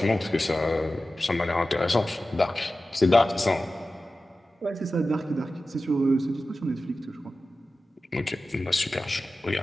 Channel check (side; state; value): both; normal; correlation 0.94